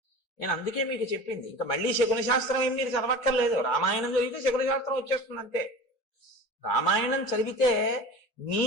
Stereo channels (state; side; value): normal; both; correlation 0.35